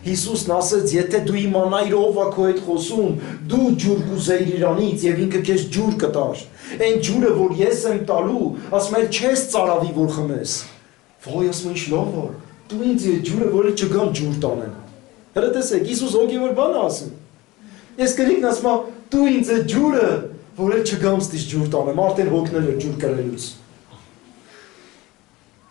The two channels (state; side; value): quieter; right; 20.3 dB